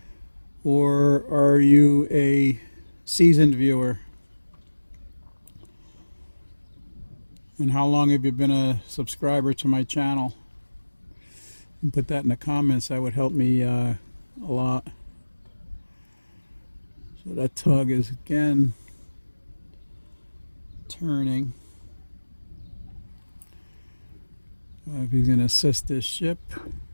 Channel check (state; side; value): inverted; both; correlation -1.00